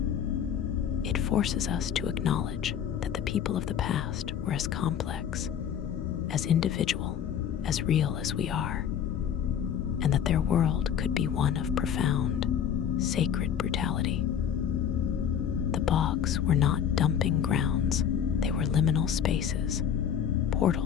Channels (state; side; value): quieter; right; 8.7 dB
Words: It forces us to acknowledge that the people of the past were as complex, as individual, as real as we are, and that their world could be one of profound, sacred brutality. The bogs were not dumping grounds, they were liminal spaces,